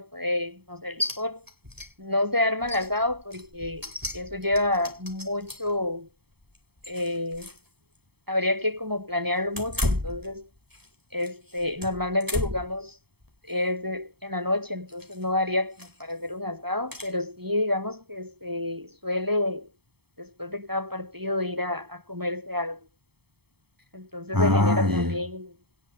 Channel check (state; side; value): late; left; 0.97 ms